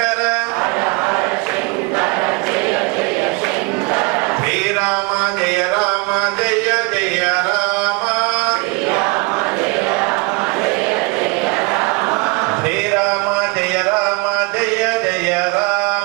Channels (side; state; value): left; quieter; 29.7 dB